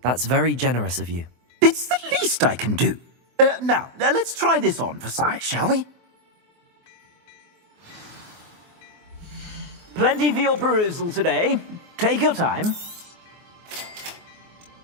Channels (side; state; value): left; late; 24 ms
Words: That's very generous of you. It's the least I can do. Now, let's try this on for size, shall we? Plenty for your perusal today. Take your time.